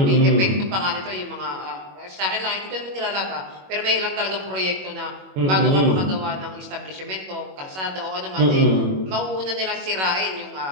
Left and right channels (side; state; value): left; late; 21 ms